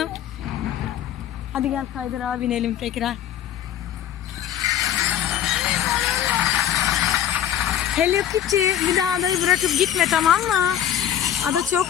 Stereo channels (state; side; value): quieter; right; 10.7 dB